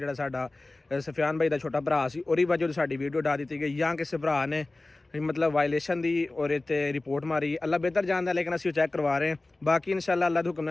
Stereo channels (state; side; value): quieter; right; 3.0 dB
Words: ਸਾਡਾ ਸਫਿਆਨ ਭਾਈ ਦਾ ਛੋਟਾ ਭਰਾ ਸੀ ਉਹਦੀ ਵਜ੍ਹਾ ਤੋਂ ਸਾਡੀ ਵੀਡੀਓ ਡਾ ਦਿੱਤੀ ਗਈ ਜਾਂ ਕਿਸੇ ਭਰਾ ਨੇ मतलब वायलेशन दी और इतने रिपोर्ट मारी। अल्लाह बेहतर जानता लेकिन असीं चैक करवा रहे हैं। बाकी इंशाल्लाह अल्लाह दे हुक्म